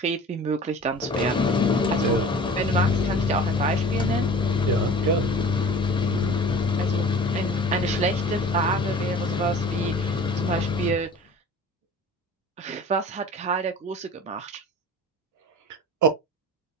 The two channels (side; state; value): both; normal; correlation 0.42